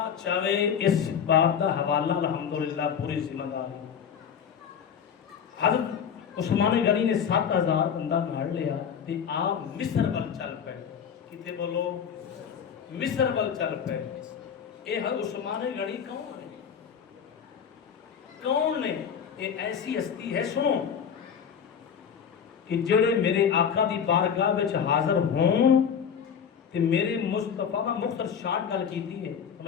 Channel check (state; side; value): quieter; right; 7.6 dB